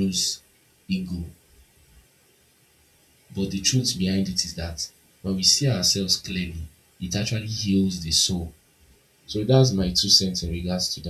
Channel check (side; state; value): both; identical; correlation 1.00